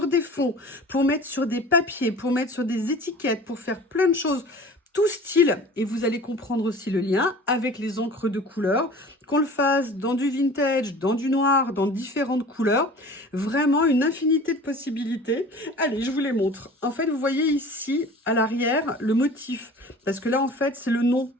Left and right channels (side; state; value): both; normal; correlation 0.42